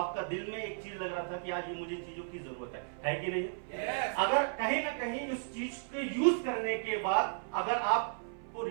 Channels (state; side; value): silent; left; 55 dB below the other